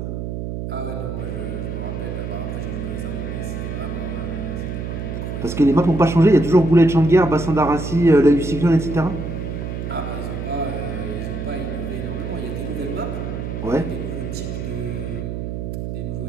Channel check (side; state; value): right; noise; hum, 5 dB below the sound